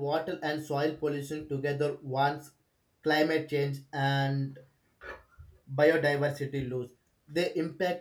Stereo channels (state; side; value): identical; both; correlation 1.00